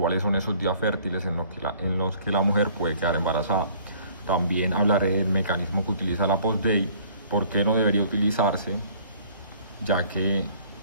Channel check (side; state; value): both; inverted; correlation -0.56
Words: son esos días fértiles en los que la mujer puede quedar embarazada. También hablaré del mecanismo que utiliza la POSDEI, por qué no debería utilizarse, ya que